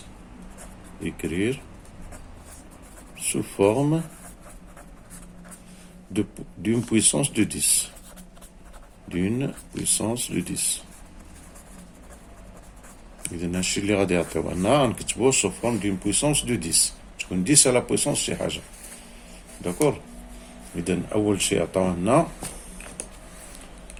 Écrire sous forme d'une puissance de 10. D'une puissance de 10. إذا هادشي اللي غادي يعطيونا نكتبوه sous forme d'une puissance de 10. تكون 10 à la puissance شي حاجة. داكور؟ إذا أول شيء عطاونا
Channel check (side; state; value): both; identical; correlation 1.00